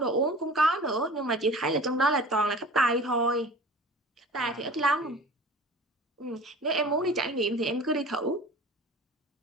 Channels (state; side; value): normal; both; correlation 0.40